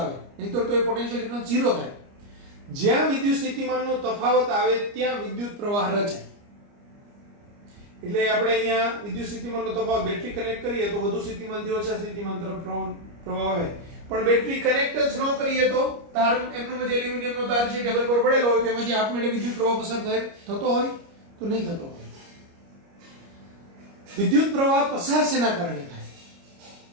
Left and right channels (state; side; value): late; left; 29 ms